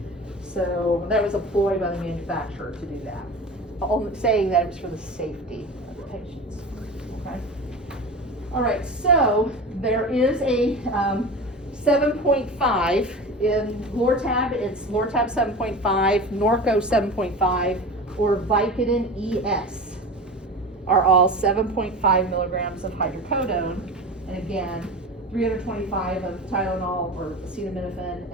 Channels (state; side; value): normal; both; correlation 0.31